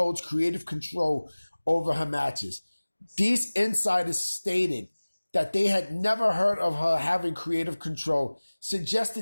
creative control over her matches. These insiders stated that they had never heard of her having creative control,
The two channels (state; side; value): inverted; both; correlation -1.00